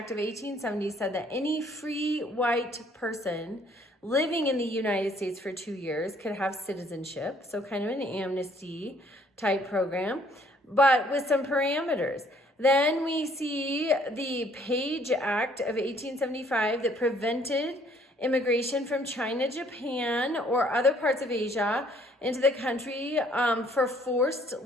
of 1870 said that any free white person living in the United States for 2 years could have citizenship, so kind of an amnesty type program, but with some parameters. Then we see the Page Act of 1875 that prevented immigration from China, Japan, or other parts of Asia into the country for forced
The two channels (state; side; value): normal; both; correlation 0.62